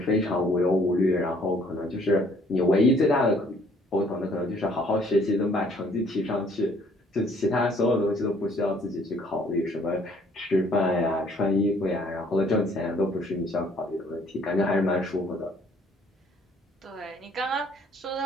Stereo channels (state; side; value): normal; both; correlation 0.61